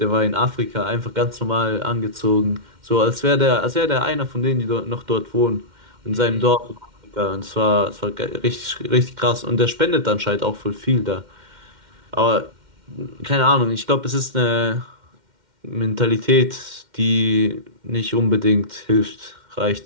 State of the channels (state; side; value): late; left; 2.1 ms